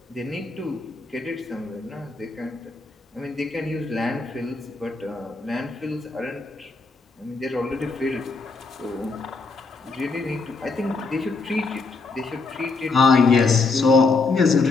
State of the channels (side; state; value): right; quieter; 4.0 dB